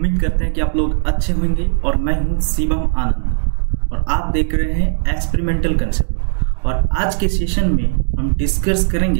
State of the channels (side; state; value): left; silent; digital silence